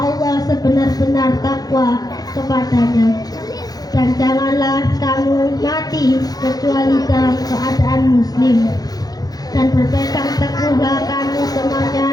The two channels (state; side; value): late; right; 0.19 ms